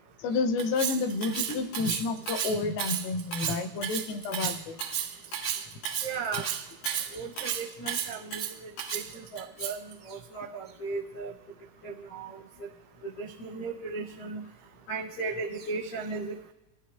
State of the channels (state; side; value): late; right; 18 ms